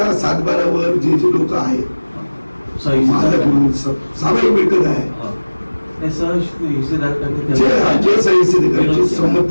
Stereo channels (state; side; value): inverted; both; correlation -1.00